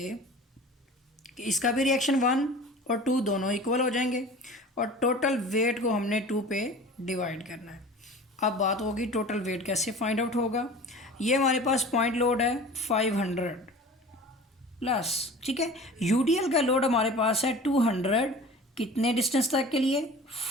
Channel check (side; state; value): both; normal; correlation 0.40